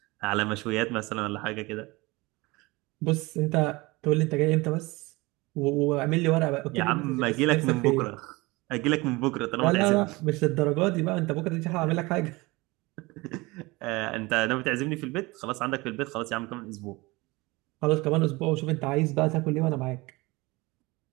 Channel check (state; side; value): quieter; left; 23.1 dB